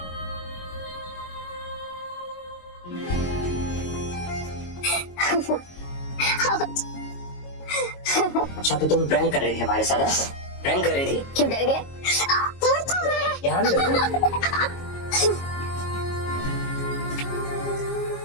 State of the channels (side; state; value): right; late; 22 ms